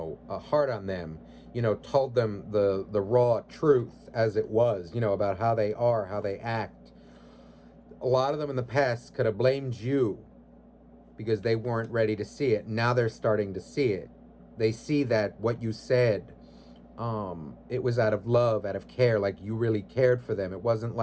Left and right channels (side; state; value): both; identical; correlation 1.00